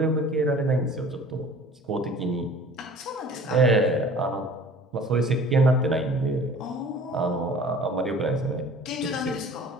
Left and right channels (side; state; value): both; normal; correlation 0.47